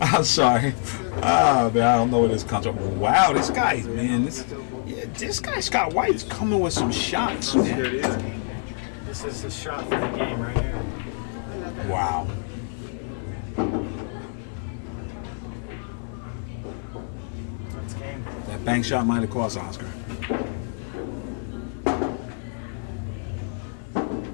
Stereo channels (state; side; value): silent; right; 61 dB below the other